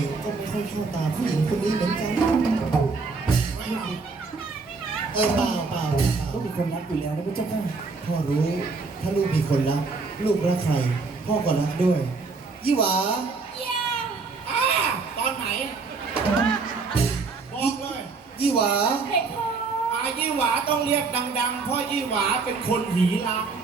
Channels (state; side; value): quieter; left; 4.3 dB